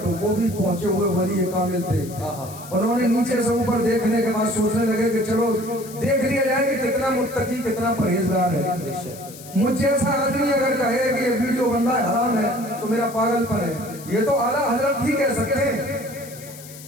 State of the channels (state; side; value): noise; left; hiss, 17 dB below the sound